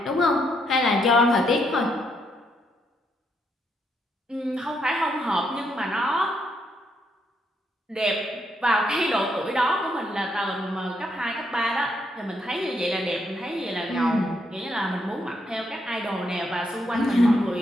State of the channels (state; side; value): normal; both; correlation 0.76